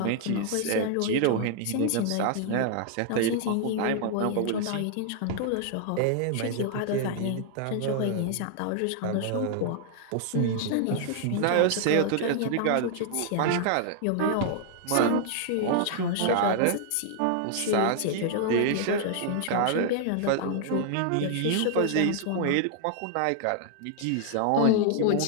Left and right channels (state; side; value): different; both; correlation -0.01